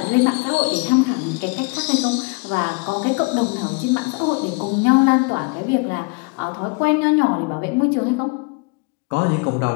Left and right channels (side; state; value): right; quieter; 31.1 dB